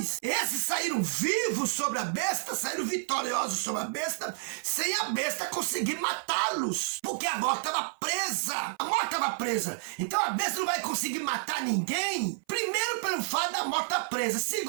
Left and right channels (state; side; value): silent; left; 58 dB below the other